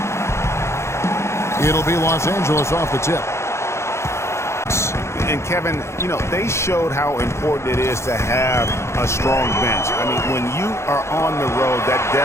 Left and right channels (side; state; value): right; late; 0.13 ms